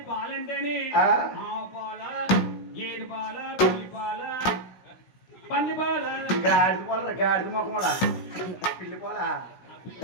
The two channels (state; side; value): late; right; 16 ms